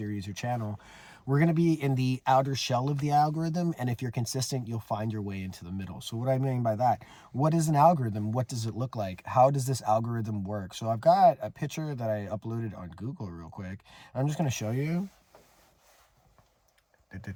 or channel, we're going to be in the outer shell of the algorithm. And if you're consistent, you'll find your way into the middle. So what I mean by that, what is an algorithm? What does it look like? How does this algorithm work? So I've got a picture that I uploaded on Google real quick. I'm just going to show you.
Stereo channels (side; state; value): both; identical; correlation 1.00